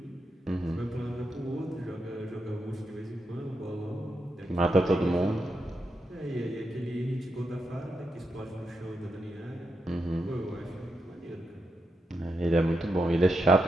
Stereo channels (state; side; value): normal; both; correlation 0.84